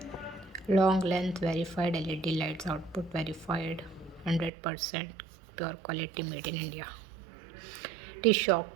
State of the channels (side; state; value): left; drops out; at 4.5 s